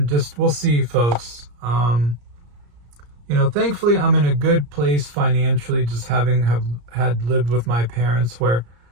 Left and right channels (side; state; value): left; late; 34 ms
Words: just, we'll see, folks. Thankfully I'm in a good place financially, just had lived with my parents, where